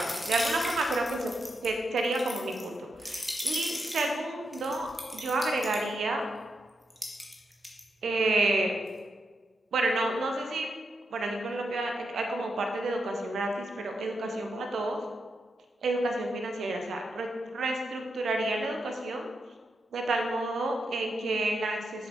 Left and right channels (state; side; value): normal; both; correlation 0.84